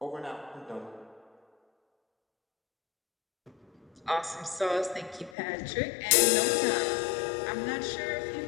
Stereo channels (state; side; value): drops out; right; at 5.4 s